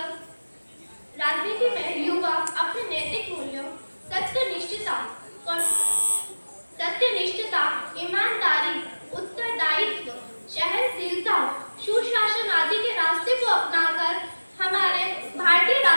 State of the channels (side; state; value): both; inverted; correlation -1.00